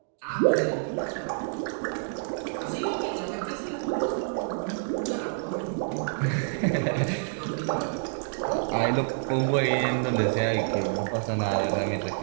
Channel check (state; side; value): silent; left; digital silence